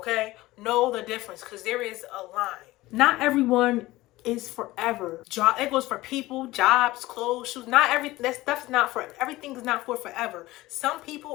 Know the difference because there is a line. Not everyone is forever. It goes for people, jobs, clothes, shoes. Not that stuff's not for everything is not for forever. Some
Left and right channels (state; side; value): quieter; right; 18.4 dB